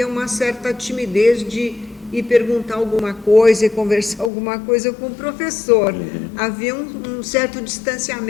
uma certa timidez de ir perguntar alguma coisa e conversar alguma coisa com o professor. Havia um certo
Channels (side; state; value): right; drops out; at 4.3 s